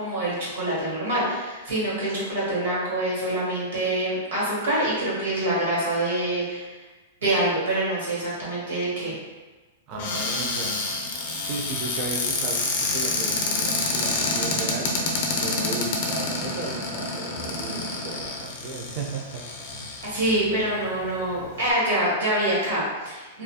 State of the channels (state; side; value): normal; both; correlation -0.18